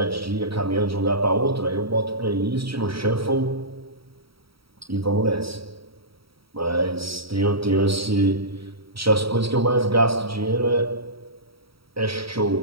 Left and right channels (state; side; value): late; left; 0.75 ms